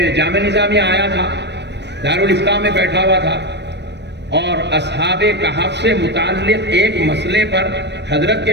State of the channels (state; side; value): late; left; 0.50 ms